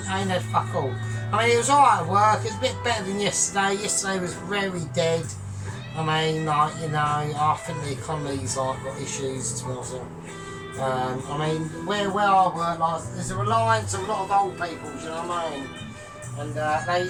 ain't had fuck all. I mean, it was alright at work. It's a bit better than yesterday. Yesterday was very dead. I mean, like, you know, I think the economy's like got issues to be honest. I mean, where I work, like, there's a reliance on a lot of old people, do you know what I mean? And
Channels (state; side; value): identical; both; correlation 1.00